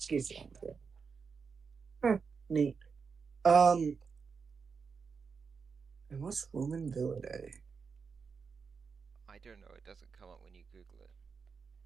geese. Huh, neat. Um, and what's Romainvilidae? I don't know, it doesn't come up when you Google it.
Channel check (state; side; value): quieter; left; 5.4 dB